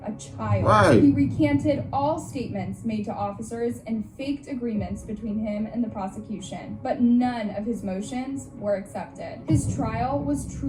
a child. Right. He recanted all statements made to officers and faked agreements between him and the prosecution, but none of his motions were accepted. His trial was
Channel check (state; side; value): identical; both; correlation 1.00